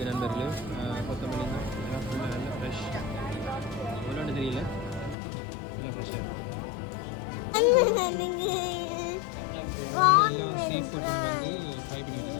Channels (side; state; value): right; drops out; at 5.2 s